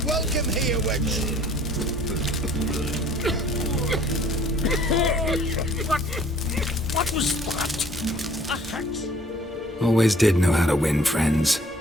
welcome here, wench. What was that? A hex? Always did know how to win friends.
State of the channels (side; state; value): both; normal; correlation 0.56